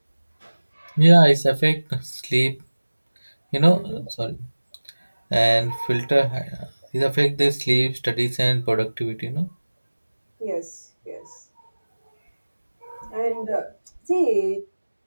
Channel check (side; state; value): both; inverted; correlation -1.00